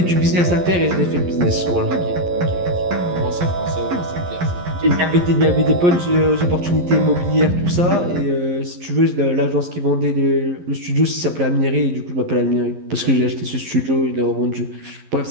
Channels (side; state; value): left; late; 11 ms